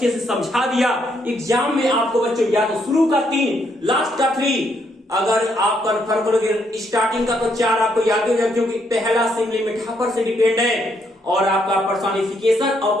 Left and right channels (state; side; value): normal; both; correlation 0.74